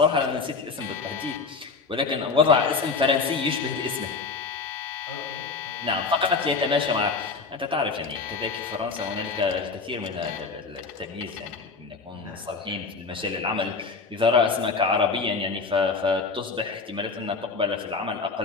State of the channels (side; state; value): right; quieter; 4.5 dB